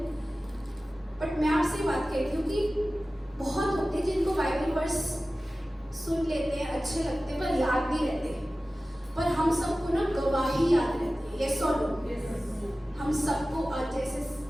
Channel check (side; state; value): both; normal; correlation 0.96